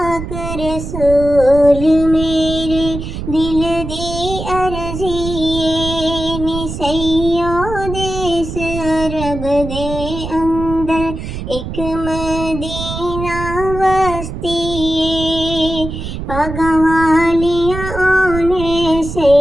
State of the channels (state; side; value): noise; right; rumble, 7 dB below the sound